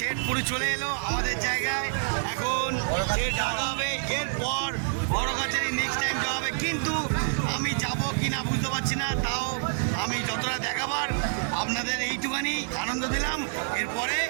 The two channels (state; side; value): silent; left; digital silence